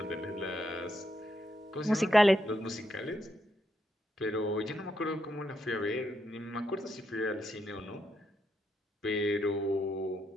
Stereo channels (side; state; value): both; normal; correlation 0.80